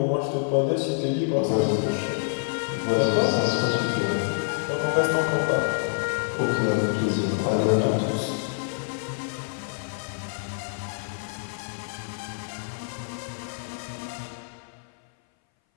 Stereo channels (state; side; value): silent; right; 59 dB below the other